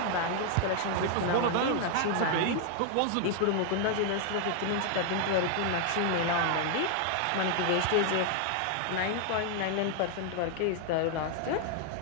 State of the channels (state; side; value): different; both; correlation 0.00